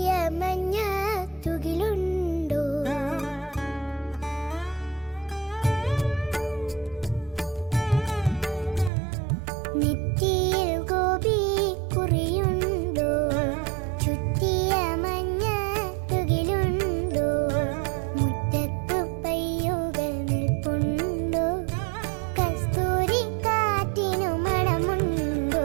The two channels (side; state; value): left; drops out; at 8.9 s